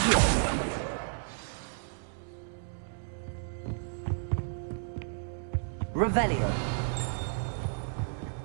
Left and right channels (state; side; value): silent; left; digital silence